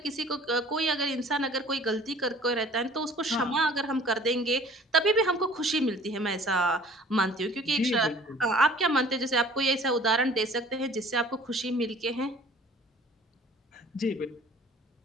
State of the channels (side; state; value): both; normal; correlation 0.51